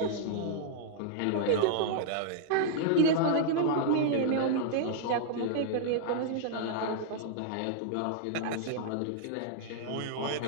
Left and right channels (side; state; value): both; different; correlation -0.01